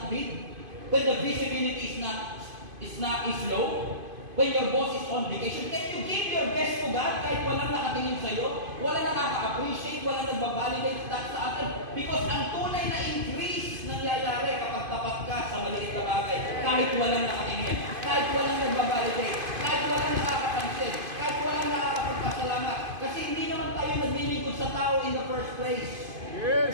big? When the visibility is low? When your boss is on vacation? Can you give your best to God kahit walang nakatingin sa'yo? Walang nakaka-appreciate, walang nagbabalidate sa atin? Because ang tunay na increase nangyayari kapag tapat ka sa maliit na bagay kahit walang nakatingin, kahit walang nagbabalidate, kahit walang nakakapansin, kahit walang nakakapagpasalamat. Kasi hindi naman tayo naglilingkod sa tao in the first place. Yes!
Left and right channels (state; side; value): late; left; 2.5 ms